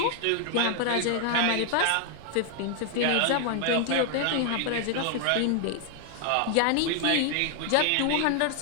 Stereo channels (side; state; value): both; different; correlation 0.00